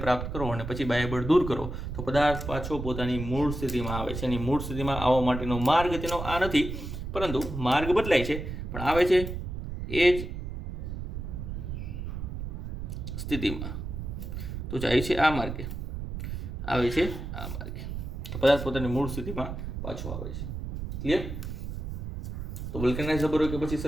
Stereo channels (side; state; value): right; noise; rumble, 6 dB below the sound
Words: પ્રાપ્ત કરો અને પછી બાહ્યબળ દૂર કરો તો પદાર્થ પાછો પોતાની મૂળ સ્થિતિમાં આવે છે. એની મૂળ સ્થિતિમાં આવવા માટેનો માર્ગ તેનો આ નથી, પરંતુ માર્ગ બદલાય છે પણ આવે છે એ જ સ્થિતિમાં. તો જાય છે આ માર્ગે, આવે છે આ માર્ગે. તો પદાર્થ પોતાની મૂળ સ્થિતિમાં પાછો આવે છે. ક્લિયર? તો વલ્કેનાઇઝ રબર કે પછી